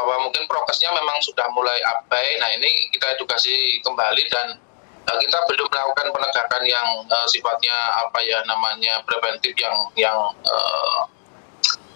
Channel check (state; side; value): silent; right; 65 dB below the other